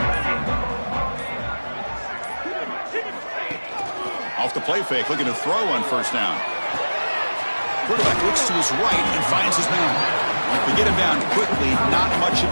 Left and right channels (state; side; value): inverted; both; correlation -1.00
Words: Off the play fake, looking to throw on first down. Quarterback looks to his right and finds his man. We get him down quickly, not much